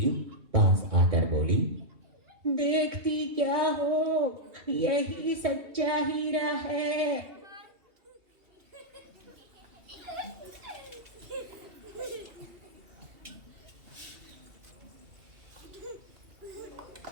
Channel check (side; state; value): left; late; 2.7 ms